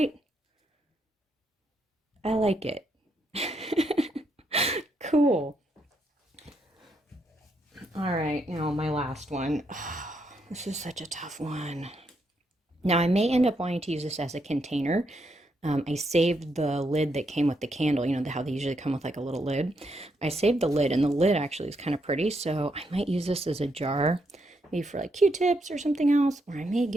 I like it. Cool. All right, my last one. This is such a tough one. Now, I may end up wanting to use this as a container. I saved the lid that came with the candle, how they usually come with like a little lid. I saved the lid, and the lid actually is kind of pretty, so I might use this as a jar, maybe for like Q-tips or something else, or I may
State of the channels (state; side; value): normal; both; correlation 0.78